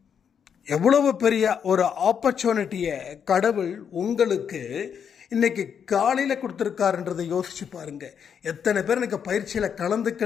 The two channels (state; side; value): quieter; right; 7.6 dB